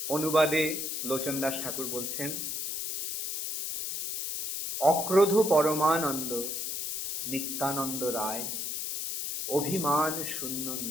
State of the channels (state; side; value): noise; left; hiss, 2 dB below the sound